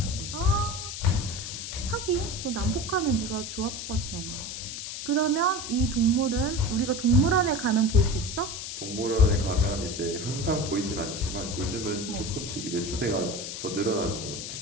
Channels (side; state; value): left; noise; hiss, 7 dB below the sound